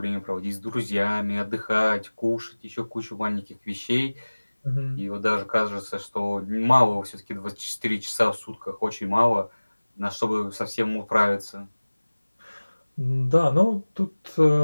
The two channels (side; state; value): both; inverted; correlation -1.00